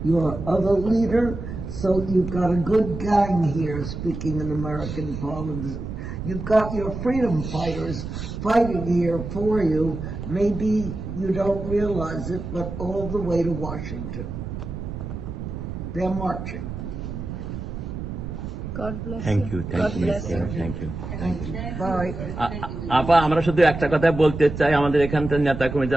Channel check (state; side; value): noise; right; rumble, 7 dB below the sound